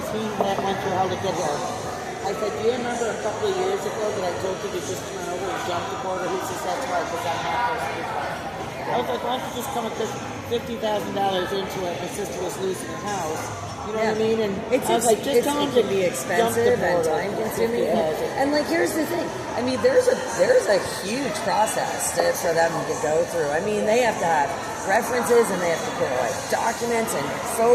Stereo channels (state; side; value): identical; both; correlation 1.00